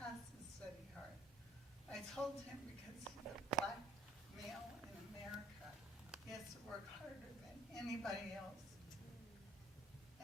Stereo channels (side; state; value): both; normal; correlation 0.59